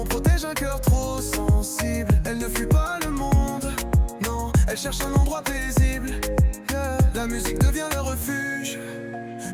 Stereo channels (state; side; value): identical; both; correlation 1.00